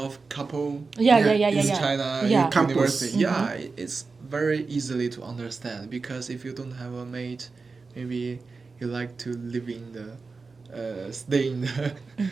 couple Yeah. in China Yeah. Campus. university? Yeah, it's very easily to understand because if you don't have a mate, maybe you like to live in the stay in the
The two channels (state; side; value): quieter; left; 4.3 dB